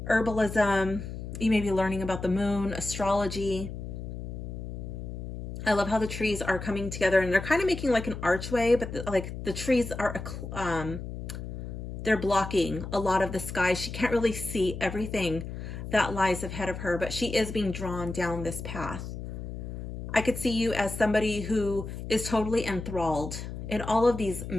herbalism. You may be learning about the moon, astrology. I love how the trees are coming together and they're kind of making like an archway, but the trees are, they're blocking a lot of the sky. She can't really see everything that lies ahead of her, but she is being drawn down this path. I could see you as somebody who is totally enthralled in all of these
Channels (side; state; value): left; noise; hum, 8 dB below the sound